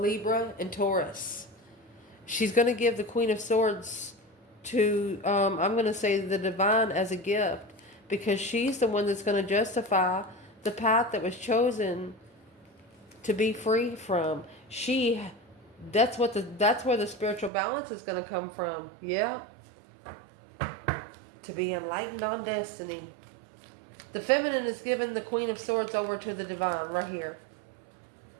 and Taurus. She's going to give the Queen of Swords to, I'm going to say the divine as a gift, because she's the one that's going to justify the path that was chosen to be free from. That's where the spiritual balance is going to come from. Yeah. To be enlightened on destiny. The feminine is giving the Queen of Swords over to the divine right here.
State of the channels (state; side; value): drops out; left; at 17.5 s